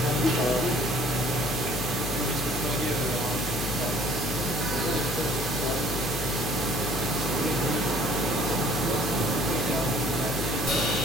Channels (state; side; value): noise; left; hum, 5 dB below the sound